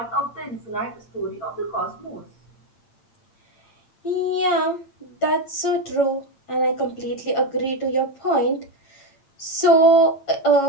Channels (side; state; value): right; late; 8.8 ms